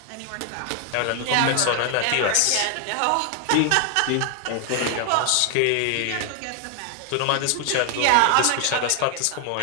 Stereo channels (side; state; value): both; different; correlation 0.00